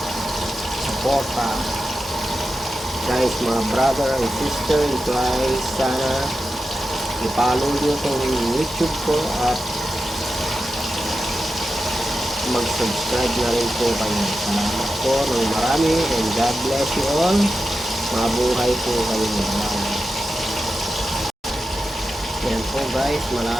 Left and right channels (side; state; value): both; normal; correlation 0.91